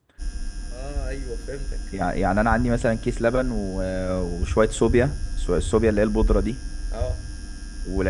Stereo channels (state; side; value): identical; both; correlation 1.00